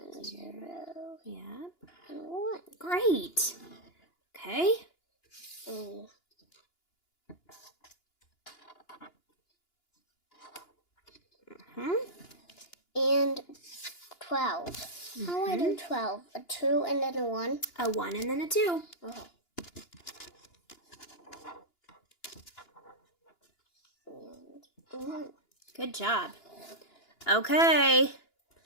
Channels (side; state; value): right; late; 2.9 ms